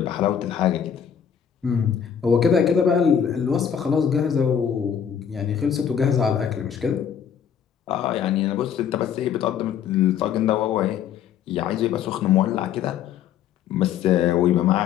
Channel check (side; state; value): right; quieter; 8.4 dB